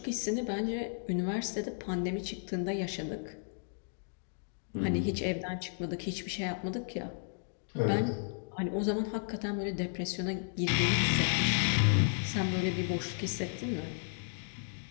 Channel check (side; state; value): right; silent; digital silence